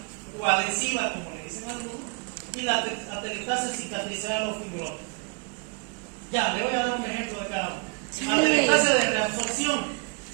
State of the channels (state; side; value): quieter; left; 33.6 dB